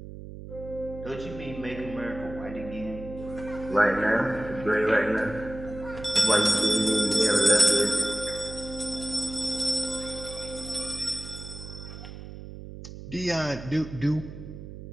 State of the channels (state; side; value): noise; right; hum, 12 dB below the sound